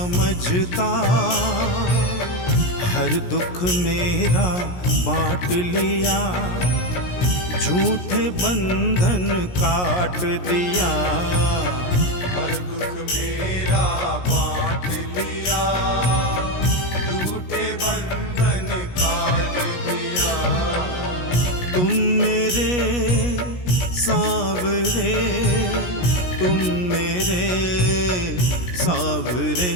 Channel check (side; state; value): right; late; 17 ms